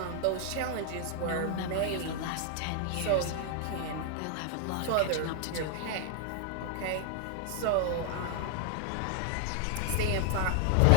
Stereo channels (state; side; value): different; both; correlation 0.00